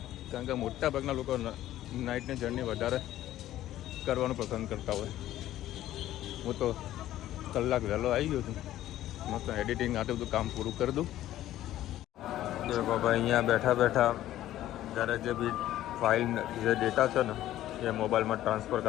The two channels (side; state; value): right; quieter; 13.6 dB